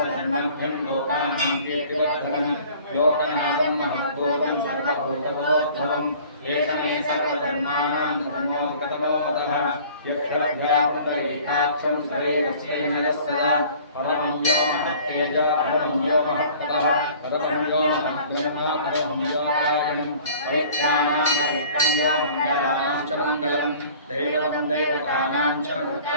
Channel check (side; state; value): both; inverted; correlation -0.49